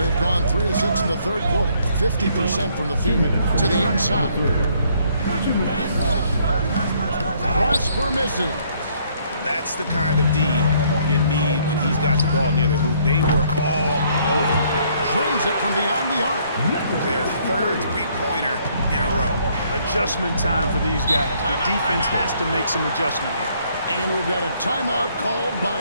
gone 3 of 6 in the third quarter. 50% from the field to the inside. Prosper misses. That's the kind of D you need when he's got the ball near the hoop. They were all over. Drains it from beyond the arc. Their third 3-pointer in a row. Adjustment time for these guys. The defense has to make some adjustment here. And we've got a timeout called by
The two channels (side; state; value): both; inverted; correlation -0.66